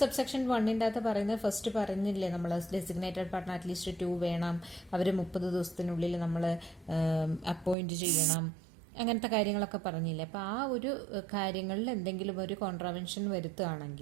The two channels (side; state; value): left; drops out; at 7.8 s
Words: subsection 1 അകത്ത് പറയുന്നത് ഫസ്റ്റ് പറഞ്ഞില്ലേ നമ്മൾ, ഡെസിഗ്നേറ്റഡ് പാർട്ട്ണർ അറ്റ്ലീസ്റ്റ് 2 വേണം, അവർ 30 ദിവസത്തിനുള്ളിൽ നമ്മൾ അപ്പോയിന്റ് ചെയ്യണം, അങ്ങനത്തെ കാര്യങ്ങളൊക്കെ പറഞ്ഞില്ലേ. അപ്പോൾ ആ ഒരു കാര്യങ്ങളിൽ എന്തെങ്കിലും ഒരു കോൺട്രാവെൻഷൻ